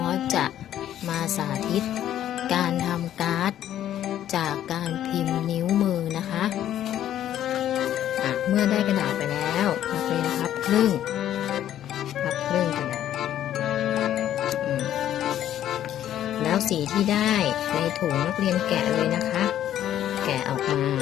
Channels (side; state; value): right; quieter; 11.5 dB